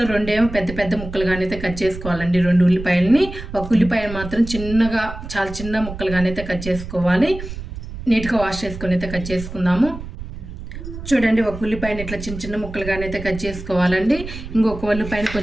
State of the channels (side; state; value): right; noise; rumble, 10 dB below the sound